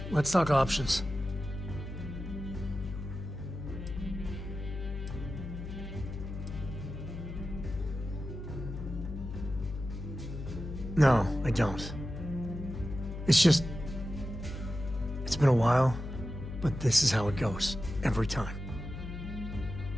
let's talk options. No, I don't. It's just... It's been a while, but this is how it goes, every time.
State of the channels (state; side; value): noise; left; hum, 8 dB below the sound